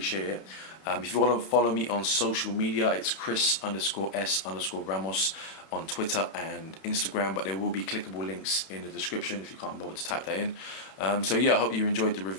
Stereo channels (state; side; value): late; right; 31 ms